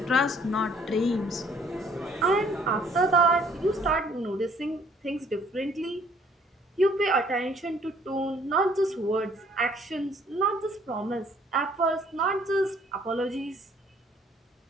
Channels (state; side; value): normal; both; correlation 0.61